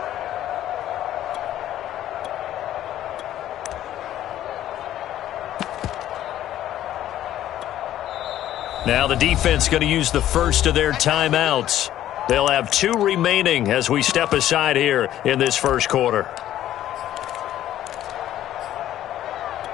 Now the defense going to use the first of their timeouts. They'll have 2 remaining as we step aside here in this first quarter.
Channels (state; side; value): quieter; right; 12.5 dB